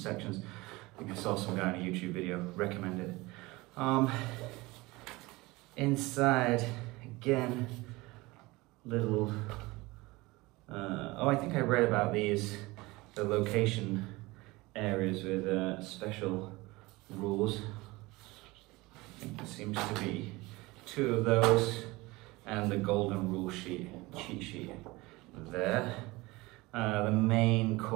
I think I saw some guy in a YouTube video recommend it. Inside, again, little. I think I read about the location areas with special rules. I think there seems to be 2 of those, and the golden rule cheat sheet there. The main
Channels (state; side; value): quieter; left; 21.9 dB